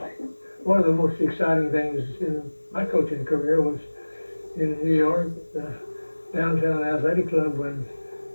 One of the most exciting things in my coaching career was in New York, downtown athletic club, when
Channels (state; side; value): inverted; both; correlation -1.00